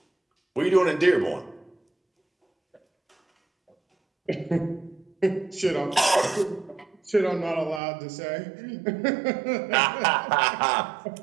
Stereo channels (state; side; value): drops out; left; at 7.8 s